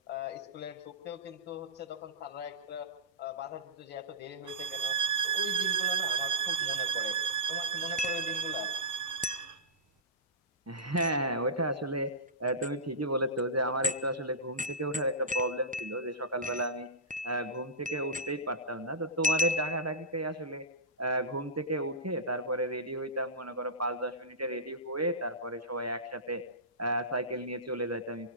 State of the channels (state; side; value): normal; both; correlation -0.15